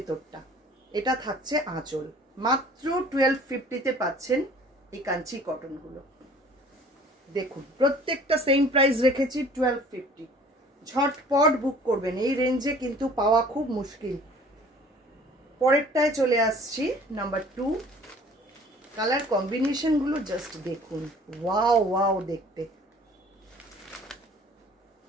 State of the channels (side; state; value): both; normal; correlation 0.50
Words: এটা থাকছে আঁচল। মাত্র 1250-তে পাচ্ছেন এই কাঞ্চি কটন গুলো। দেখুন প্রত্যেকটা সেম প্রাইস রেখেছি 1250। ঝটপট বুক করবেন, এই রেঞ্জে কিন্তু পাওয়া খুব মুশকিল। পরেরটায় চলে আসছি, নাম্বার 2। কালার কম্বিনেশন গুলো জাস্ট দেখুন, ওয়াও ওয়াও দেখতে।